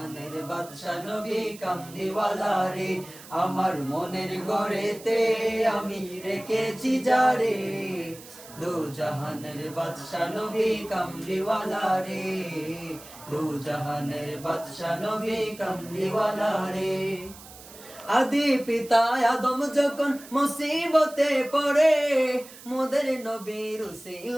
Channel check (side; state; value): right; noise; hiss, 18 dB below the sound